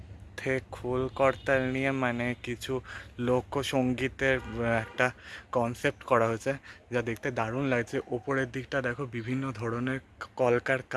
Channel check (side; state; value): both; identical; correlation 1.00